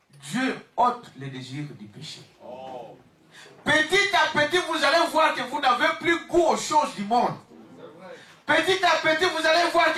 Dieu ôte les désirs du péché. Petit à petit, vous allez voir que vous n'avez plus goût aux choses du monde. Petit à petit, vous allez voir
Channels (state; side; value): identical; both; correlation 1.00